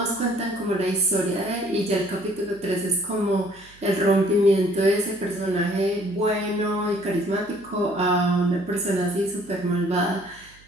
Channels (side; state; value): right; noise; hum, 26 dB below the sound